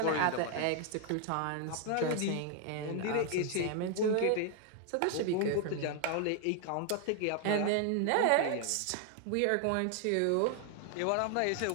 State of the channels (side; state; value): both; different; correlation 0.00